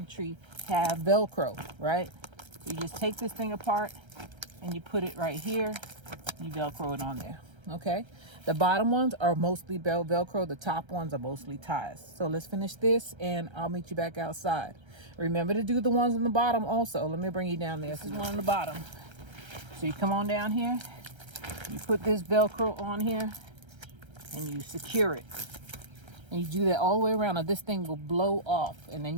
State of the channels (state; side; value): late; left; 1.3 ms